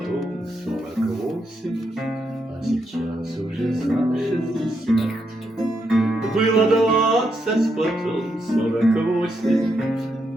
48, а сейчас уже за 60. Было 20, потом 48,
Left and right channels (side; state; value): both; normal; correlation 0.80